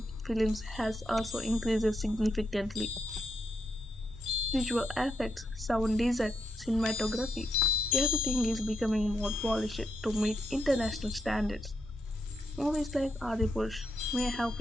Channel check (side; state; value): both; normal; correlation 0.81